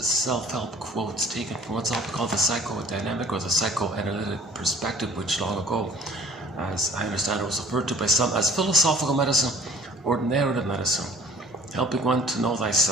self-help quotes taken from what's often called the psychodynamic or the psychoanalytic perspective, which long ago, as I understand it, was referred to by some as philosophical medicine or narrative medicine, helping one to know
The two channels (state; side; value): normal; both; correlation 0.54